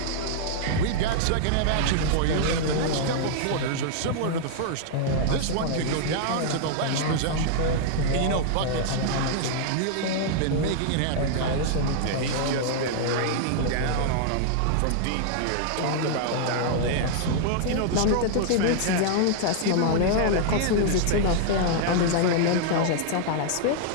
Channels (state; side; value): different; both; correlation -0.01